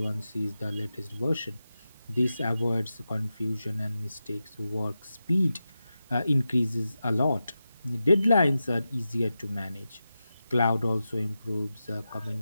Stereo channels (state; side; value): inverted; both; correlation -0.91